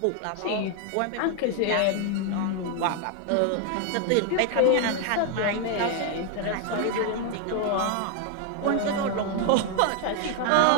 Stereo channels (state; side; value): different; both; correlation 0.00